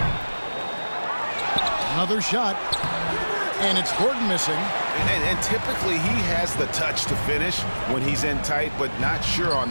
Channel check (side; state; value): both; inverted; correlation -1.00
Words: Another shot. And it's Gordon missing. And typically he has the touch to finish when he's in tight, but not sure on